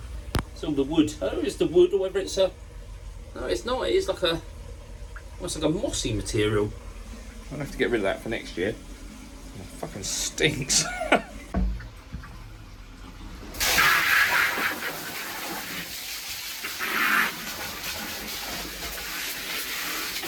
the wood. I don't know if it's the wood or whether it's a... No, it's not. It is like a... almost like a mossy material. I'll have to get rid of that for next year. It fucking stinks.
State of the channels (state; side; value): identical; both; correlation 1.00